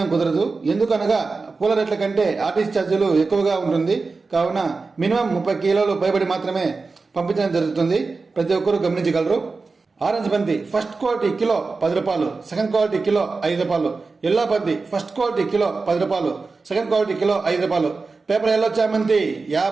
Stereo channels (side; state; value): left; quieter; 4.1 dB